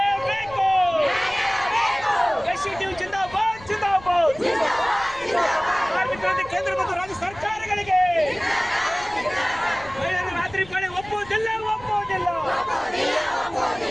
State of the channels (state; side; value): noise; left; rumble, 20 dB below the sound